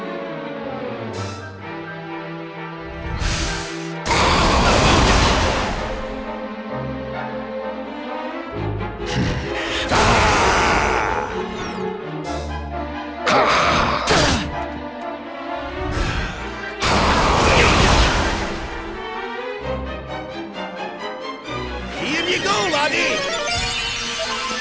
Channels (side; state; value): both; identical; correlation 1.00